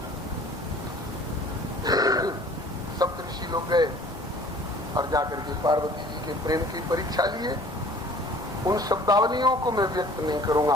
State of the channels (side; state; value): both; normal; correlation 0.50